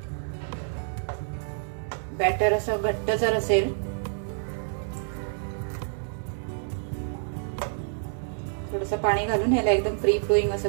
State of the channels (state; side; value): silent; left; digital silence